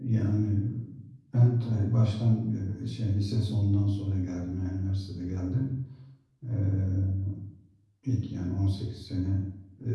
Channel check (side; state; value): both; identical; correlation 1.00